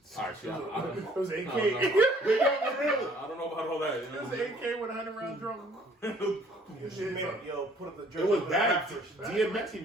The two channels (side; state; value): both; normal; correlation 0.58